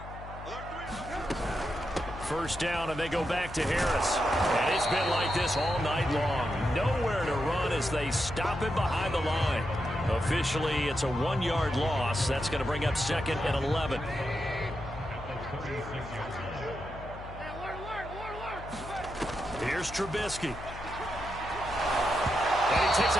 First down, and they go back to Harris. And it's been like this all night long. Nowhere to run as they stop him behind the line. Officially, it's a 1-yard loss. That's going to bring up second and 11. Here's Trubisky. And he takes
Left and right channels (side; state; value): left; noise; hum, 12 dB below the sound